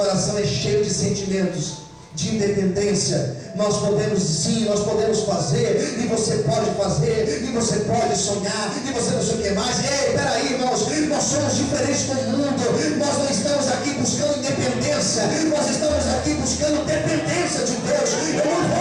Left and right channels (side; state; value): both; identical; correlation 1.00